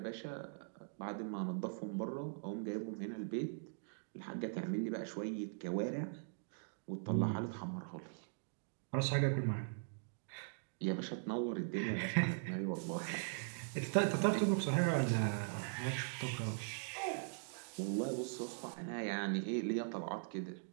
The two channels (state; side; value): silent; left; digital silence